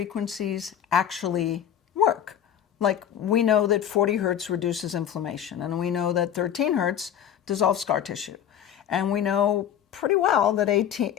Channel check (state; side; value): quieter; right; 9.5 dB